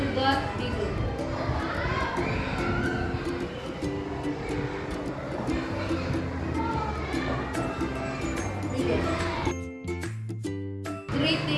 the God be good. Begin.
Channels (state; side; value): identical; both; correlation 1.00